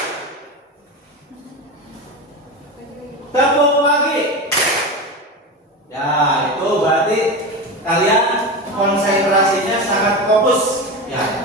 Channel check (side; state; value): both; normal; correlation 0.23